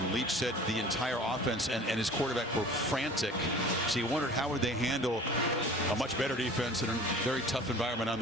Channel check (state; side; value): normal; both; correlation 0.44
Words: Leach said the entire offense and his quarterback were frantic. So he wondered how would they handle a much better defense in a very tough environment on